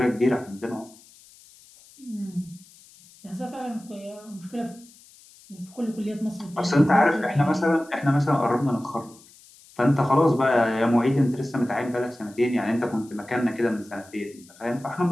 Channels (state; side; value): noise; left; hiss, 25 dB below the sound